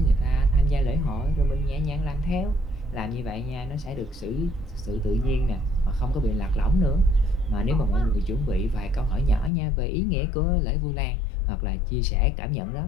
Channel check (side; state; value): right; drops out; at 9.5 s